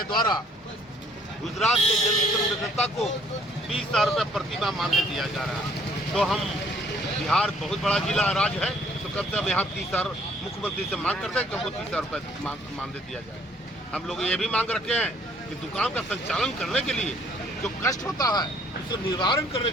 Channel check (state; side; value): normal; both; correlation 0.61